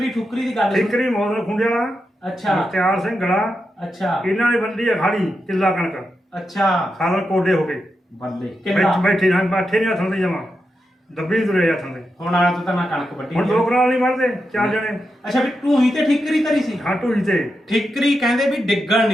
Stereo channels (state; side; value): normal; both; correlation 0.87